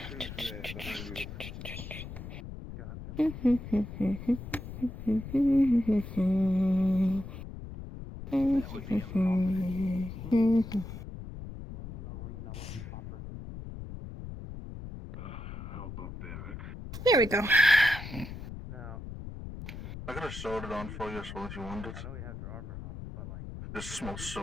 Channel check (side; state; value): left; noise; rumble, 10 dB below the sound